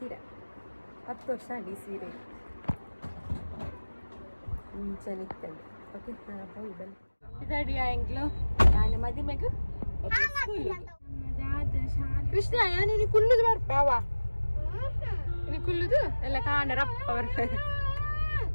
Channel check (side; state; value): both; inverted; correlation -1.00